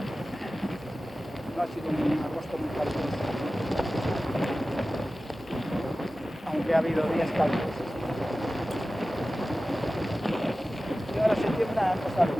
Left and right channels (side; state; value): both; normal; correlation 0.95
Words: No ha sido un agosto muy caluroso, aunque ha habido días calurosos. Y ahora septiembre ha pasado